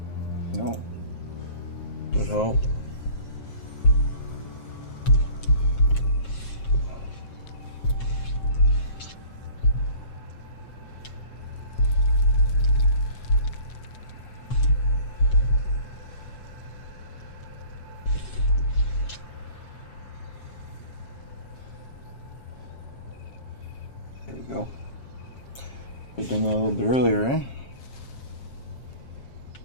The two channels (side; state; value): right; late; 7.5 ms